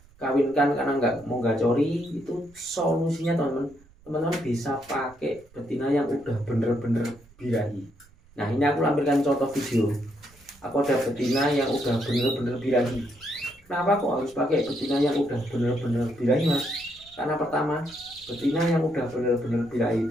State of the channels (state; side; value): noise; right; rumble, 28 dB below the sound